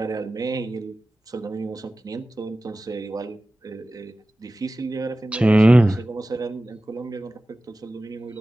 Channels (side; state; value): both; normal; correlation 0.96